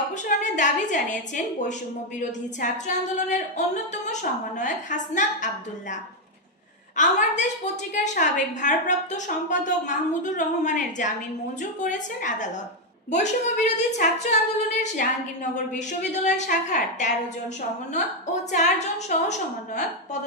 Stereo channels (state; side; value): normal; both; correlation 0.03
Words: অপসারণের দাবি জানিয়েছেন বৈষম্য বিরোধী ছাত্র আন্দোলনের অন্যতম সমন্বয়ক হাসনাত আব্দুল্লাহ। আমার দেশ পত্রিকার সাবেক ভারপ্রাপ্ত সম্পাদক মাহমুদুর রহমানের জামিন মঞ্জুর করেছেন আদালত। বৈষম্য বিরোধী ছাত্র আন্দোলনের জাহাঙ্গীরনগর বিশ্ববিদ্যালয় শাখার ১৩ জন সমন্বয়ক ও ৪ জন সহ সমন্বয়ক